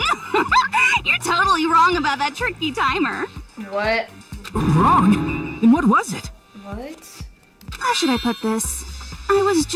You're totally wrong about that tricky timer. What? Wrong? Then what was it? What? How should I put this? I was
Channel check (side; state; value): both; identical; correlation 1.00